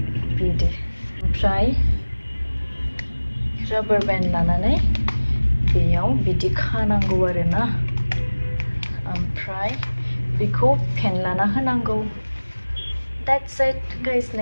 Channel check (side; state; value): both; inverted; correlation -1.00